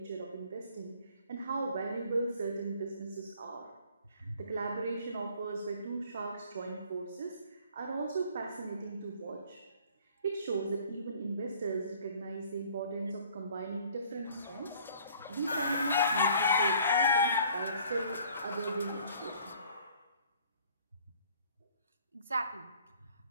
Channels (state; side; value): inverted; both; correlation -0.55